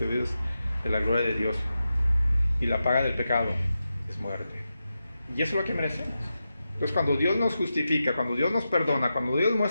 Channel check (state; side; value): inverted; both; correlation -0.90